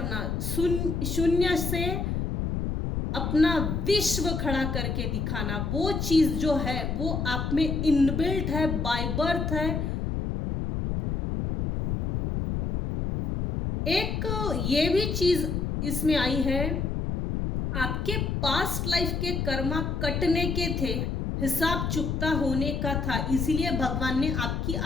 शून्य से अपना विश्व खड़ा करके दिखाना, वो चीज जो है वो आप में इनबिल्ट है, बाय बर्थ है। एक ये भी चीज इसमें आई है, आपके पास्ट लाइफ के कर्मा कटने के थे, हिसाब चुकता होने का था, इसीलिए भगवान ने आपकी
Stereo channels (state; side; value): noise; left; rumble, 1 dB below the sound